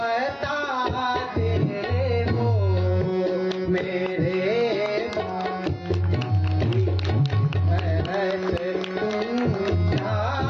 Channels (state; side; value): identical; both; correlation 1.00